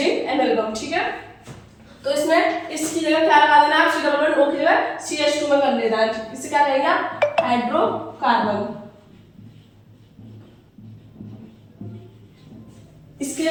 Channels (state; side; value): identical; both; correlation 1.00